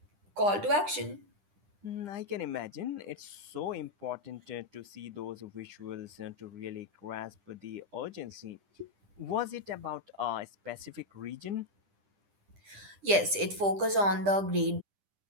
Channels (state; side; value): late; left; 10 ms